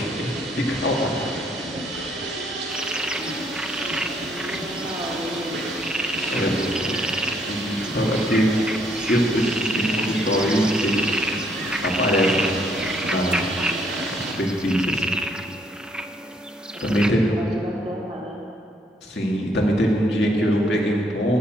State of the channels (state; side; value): normal; both; correlation 0.69